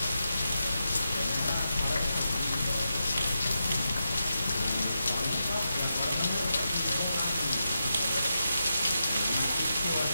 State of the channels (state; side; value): inverted; both; correlation -0.87